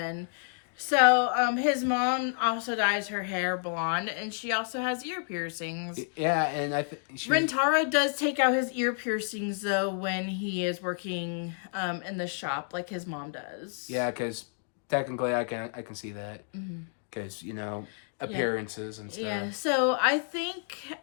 So, his mom also dyes her hair blonde, and she also has ear piercings. Yeah, and Rentaro does take out his ear piercings, though, when he is working in the shop, like his mom does. Yeah, because technically I can see that. Because, appearances and stuff. Yeah, so I think,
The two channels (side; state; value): right; silent; 58 dB below the other